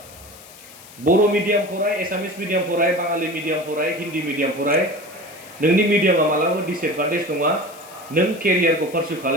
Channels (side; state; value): left; noise; hiss, 20 dB below the sound